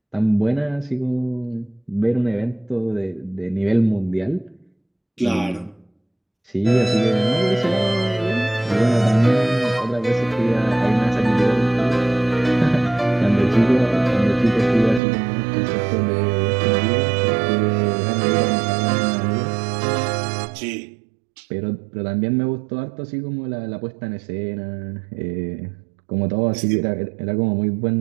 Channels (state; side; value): drops out; left; at 15.0 s